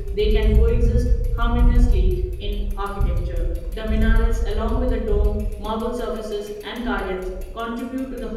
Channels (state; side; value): identical; both; correlation 1.00